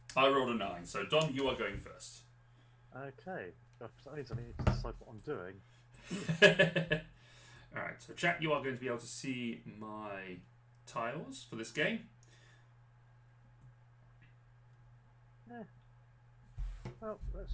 I rolled a 9, so Dom, you are going first. Okay, that means I need to decide what I'm doing. Alright, so chat, you are going to be able to see my tiles for this game. Yeah. Well, let's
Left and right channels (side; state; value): both; identical; correlation 1.00